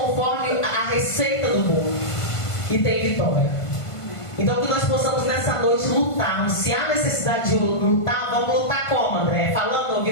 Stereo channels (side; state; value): right; late; 1.5 ms